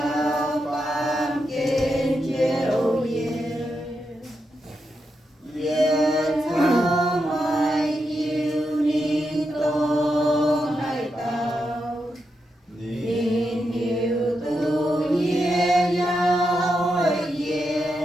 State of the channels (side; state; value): both; normal; correlation 0.85